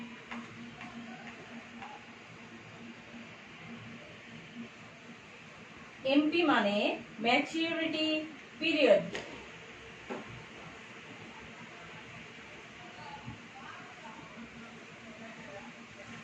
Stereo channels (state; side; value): identical; both; correlation 1.00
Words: MP মানে ম্যাচিউরিটি পিরিয়ড।